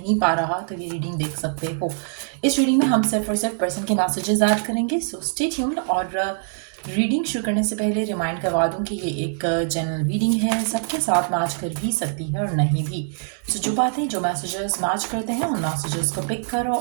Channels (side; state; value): left; silent; digital silence